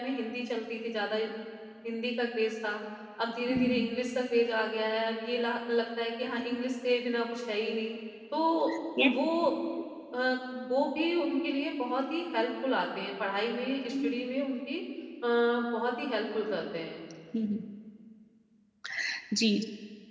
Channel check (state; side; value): identical; both; correlation 1.00